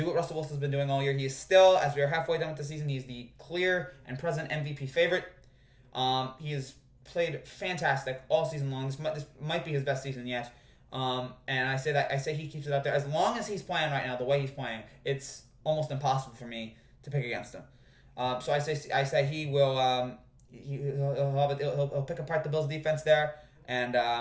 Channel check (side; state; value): both; identical; correlation 1.00